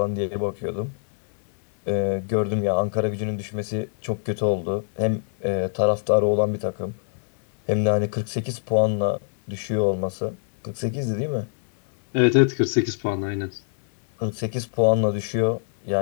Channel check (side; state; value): right; silent; 60 dB below the other